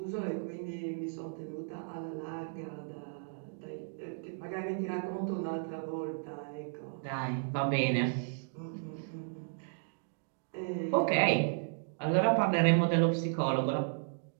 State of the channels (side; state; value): left; silent; digital silence